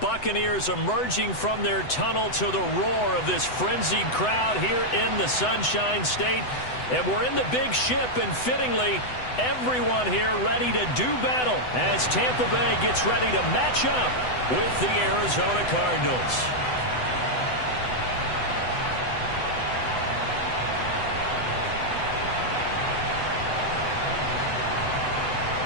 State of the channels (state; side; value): late; right; 8.0 ms